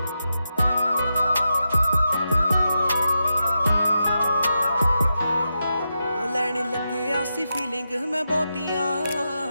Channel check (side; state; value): both; inverted; correlation -0.88